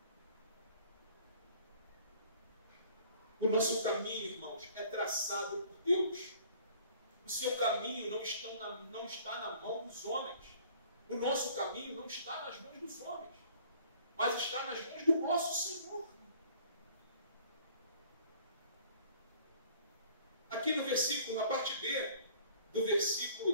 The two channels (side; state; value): both; inverted; correlation -0.53